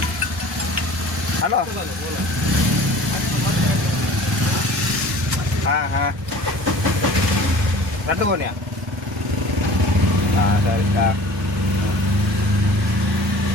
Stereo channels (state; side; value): normal; both; correlation 0.45